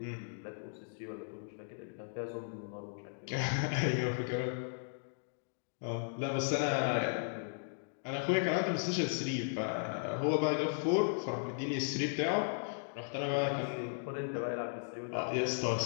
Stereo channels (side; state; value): right; silent; digital silence